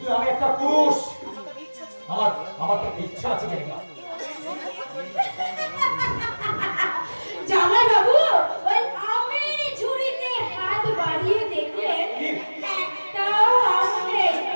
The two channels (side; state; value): both; inverted; correlation -1.00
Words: আমি একটা পুরুষ, আমার তো ইচ্ছা আছে কেন? জামাই বাবু ওই আমের ঝুড়িতে হাত বাড়িয়ে দেখলেন একটাও আম নেই,